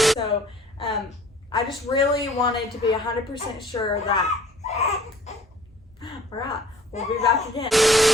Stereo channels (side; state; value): both; normal; correlation 0.53